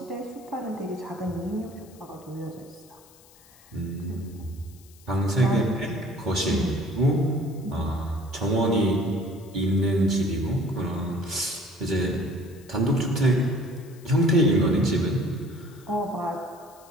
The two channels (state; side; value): noise; left; hiss, 26 dB below the sound